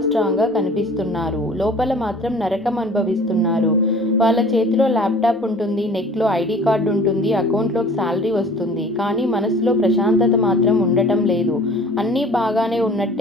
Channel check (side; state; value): both; normal; correlation 0.47